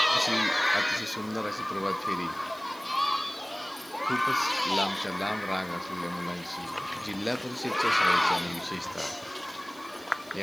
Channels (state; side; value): noise; right; hiss, 22 dB below the sound